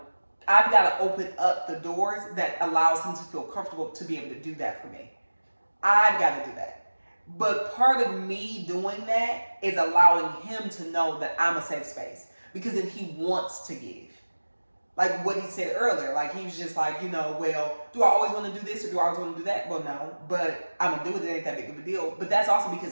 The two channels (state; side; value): inverted; both; correlation -1.00